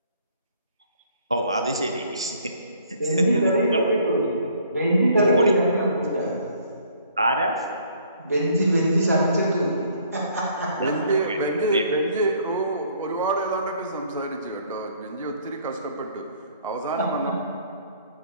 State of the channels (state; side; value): inverted; both; correlation -0.61